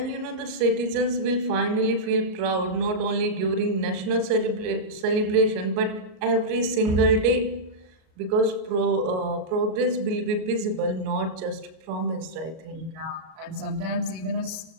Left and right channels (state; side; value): late; left; 38 ms